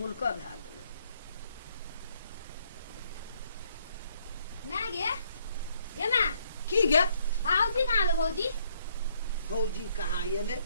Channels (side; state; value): both; inverted; correlation -0.68